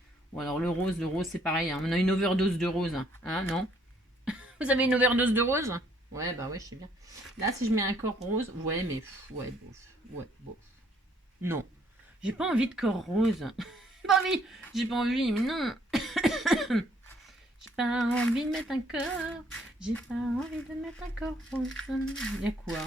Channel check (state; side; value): normal; both; correlation 0.65